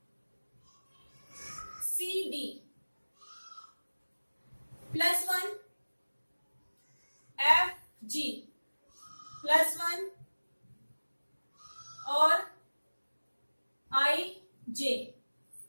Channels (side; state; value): both; inverted; correlation -1.00